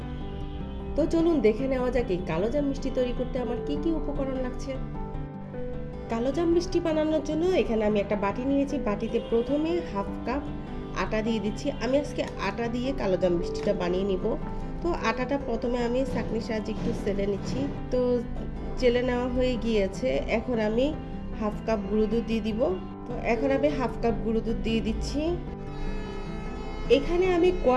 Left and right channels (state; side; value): identical; both; correlation 1.00